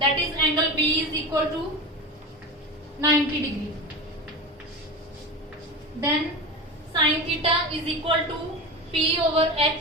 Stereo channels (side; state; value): both; normal; correlation 0.26